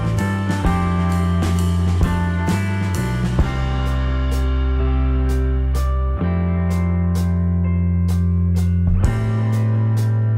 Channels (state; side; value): identical; both; correlation 1.00